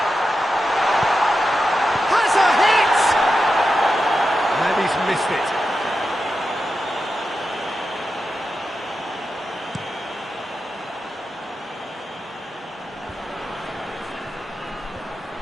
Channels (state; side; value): normal; both; correlation 0.90